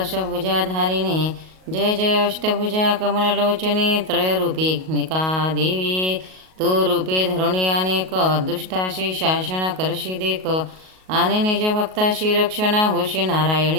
जय जय अष्टभुजा कमललोचने त्रयरूपिका देवी. तू रूपे धरुणी अनेक, दुष्टाशी शासन करशी देख, आणि निज भक्ताशी रक्षणा होशी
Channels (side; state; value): left; late; 38 ms